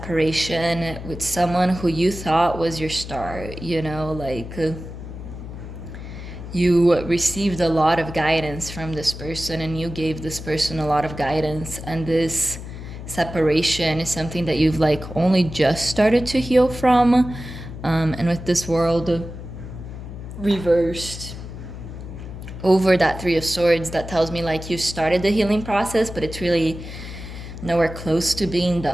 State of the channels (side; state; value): left; noise; hum, 11 dB below the sound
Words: with someone who you thought was your star, you know, like you received a lot of guidance from this person and you gave this person a lot of guidance, and this separation is something that you've like only just started to heal from. And with this World reversed over that Three of Swords, that tells me like you started the healing process, but it's really nowhere close to being